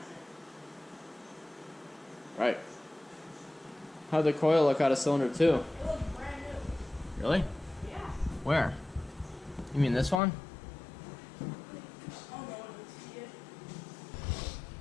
it? Right. How'd the coil look out of cylinder 2? It looks brand new. Really? Yeah. Where? You mean this one? Oh, no one would see it.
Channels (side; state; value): right; drops out; at 10.2 s